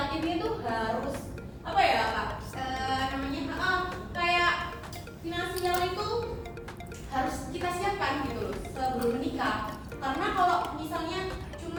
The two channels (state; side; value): identical; both; correlation 1.00